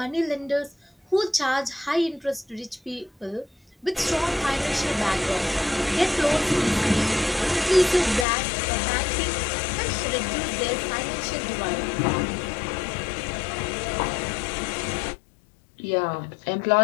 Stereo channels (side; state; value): right; drops out; at 8.2 s